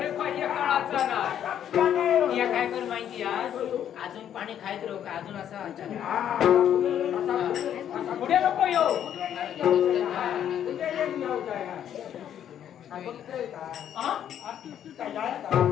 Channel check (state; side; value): quieter; right; 9.9 dB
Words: पाहिजे काळाचा ना या काय कर माहिती अजून पाणी खायत राहू का अजून असं पुढे नको येऊ